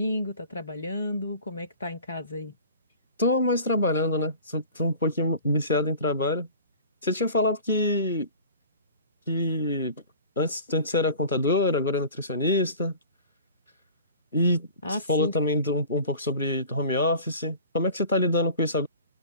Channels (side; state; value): both; inverted; correlation -0.41